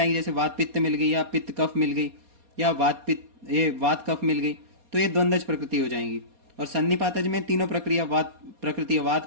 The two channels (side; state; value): left; late; 4.2 ms